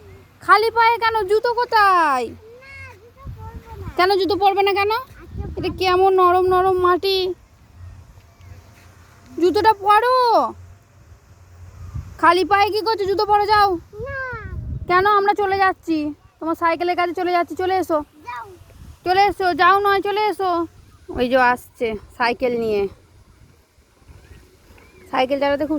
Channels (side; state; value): both; identical; correlation 1.00